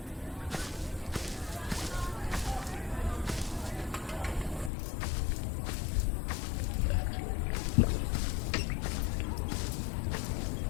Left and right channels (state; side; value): drops out; right; at 4.7 s